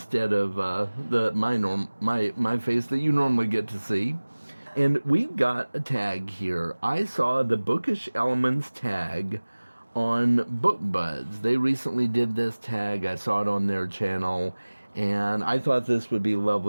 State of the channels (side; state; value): both; inverted; correlation -1.00